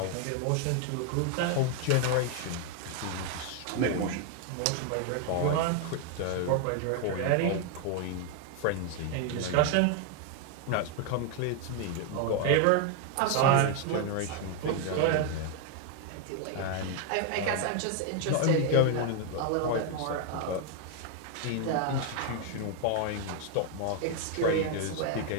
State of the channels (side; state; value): both; different; correlation 0.01